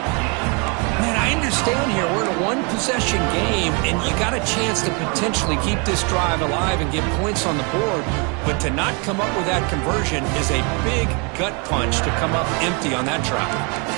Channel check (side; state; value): left; quieter; 33.1 dB